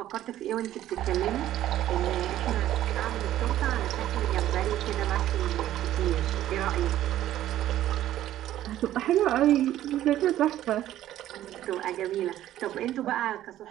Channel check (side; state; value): left; quieter; 12.9 dB